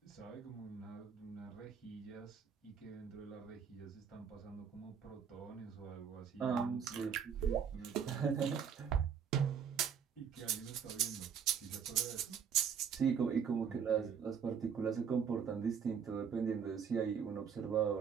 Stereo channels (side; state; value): left; quieter; 7.2 dB